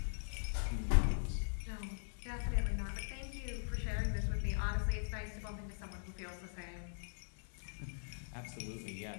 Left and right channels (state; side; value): silent; right; 50 dB below the other